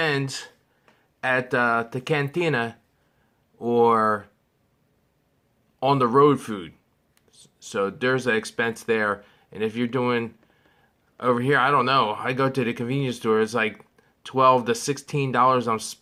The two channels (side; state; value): both; identical; correlation 1.00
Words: at the cantina or on the road food. So there's an expense there. And if you're doing over here, I don't know. I go to the convenience store. It's like $12 to $16 I'm